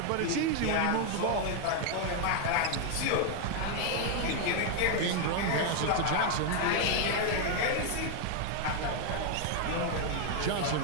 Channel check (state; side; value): different; both; correlation 0.00